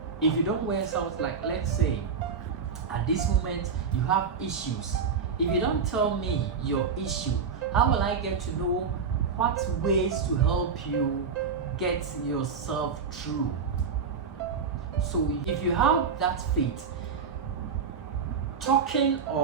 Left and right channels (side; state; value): left; quieter; 5.8 dB